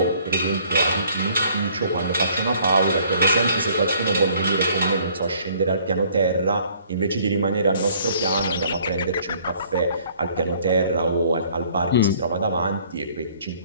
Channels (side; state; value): both; inverted; correlation -0.59